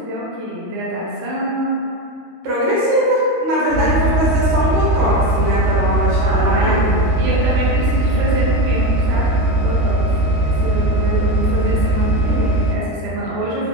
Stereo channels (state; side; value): late; left; 13 ms